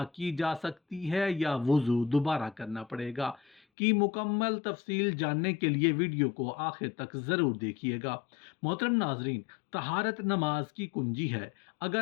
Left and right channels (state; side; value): drops out; right; at 3.6 s